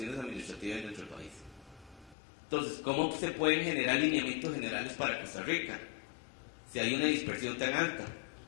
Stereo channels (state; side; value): drops out; right; at 2.1 s